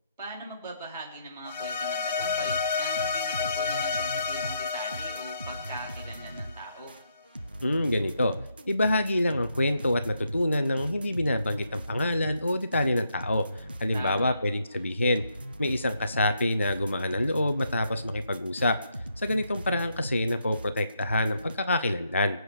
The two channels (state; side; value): inverted; both; correlation -0.77